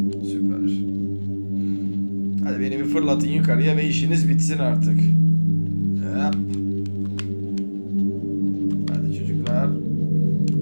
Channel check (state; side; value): inverted; both; correlation -1.00